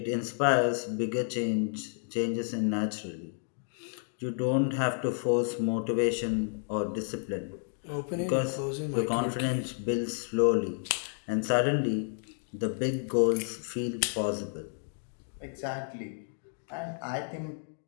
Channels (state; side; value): silent; right; 57 dB below the other